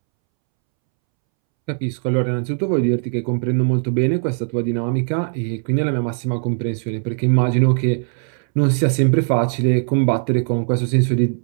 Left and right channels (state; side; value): silent; left; 66 dB below the other